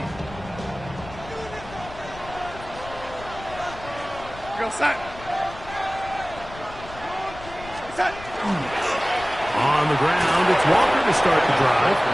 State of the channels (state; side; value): noise; left; rumble, 15 dB below the sound